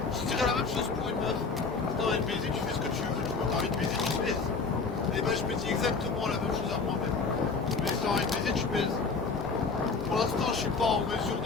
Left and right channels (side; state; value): right; quieter; 4.6 dB